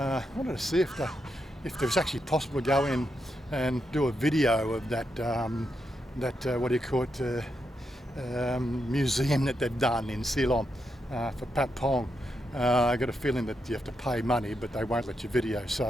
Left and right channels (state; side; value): normal; both; correlation 0.83